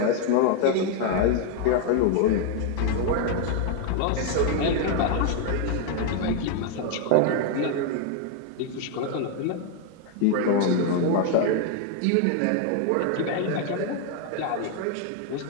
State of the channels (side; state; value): both; different; correlation 0.00